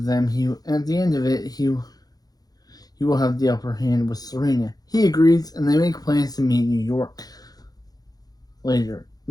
it, he will have the upper hand with Serena. He agrees, and they make plans to meet in New York later.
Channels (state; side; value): late; right; 0.19 ms